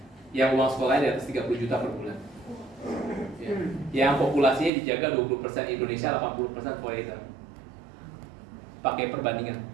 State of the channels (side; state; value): left; drops out; at 4.7 s